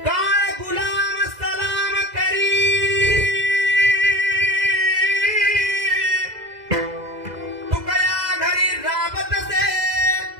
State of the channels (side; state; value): left; late; 2.0 ms